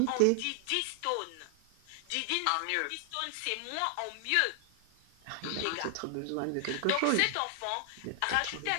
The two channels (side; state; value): both; different; correlation 0.00